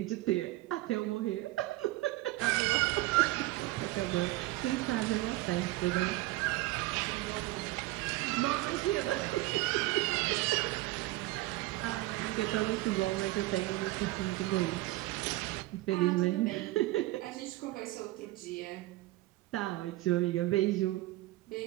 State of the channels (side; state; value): left; quieter; 18.7 dB